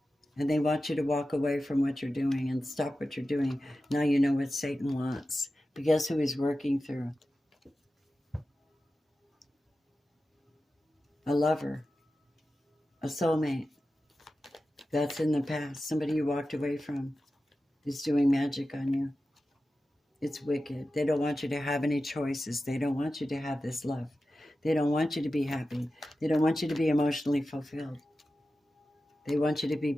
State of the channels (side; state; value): both; normal; correlation 0.93